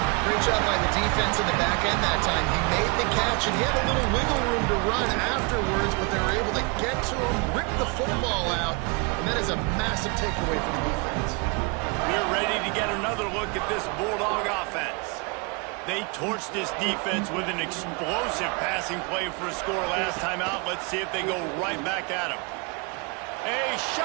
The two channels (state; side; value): quieter; left; 31.5 dB